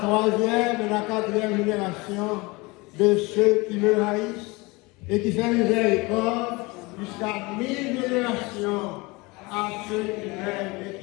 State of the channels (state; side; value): quieter; right; 24.6 dB